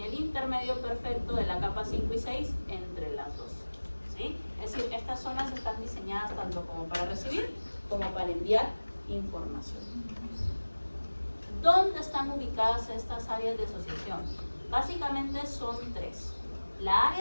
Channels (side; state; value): both; inverted; correlation -1.00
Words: el intermedio perfecto de la capa 5 y 6 entre las dos. ¿Sí? Es decir, estas zonas están diseñadas tanto como para recibir como para enviar información. ¿Dónde están ubicadas estas áreas de asociación? Básicamente son 3. La